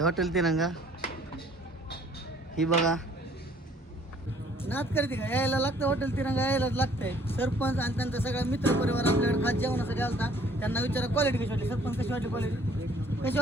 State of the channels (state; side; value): normal; both; correlation 0.58